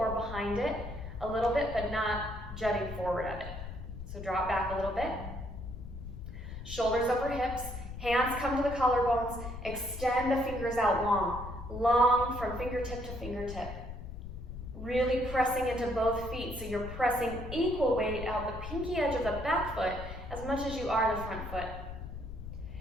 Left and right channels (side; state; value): left; noise; rumble, 9 dB below the sound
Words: behind it a little bit, but not jutting forward at it. So draw it back a little bit. Shoulders over hips, hands come to the collarbones, extend the fingers out long from fingertip to fingertip. Really pressing into both feet, so you're pressing equal weight out the pinky edge of the back foot as much as you are the front foot.